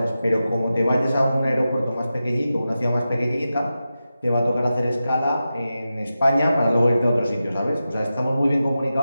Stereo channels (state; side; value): inverted; both; correlation -0.92